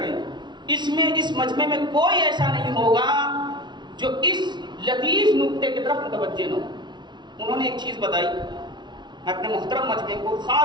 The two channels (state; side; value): late; left; 0.21 ms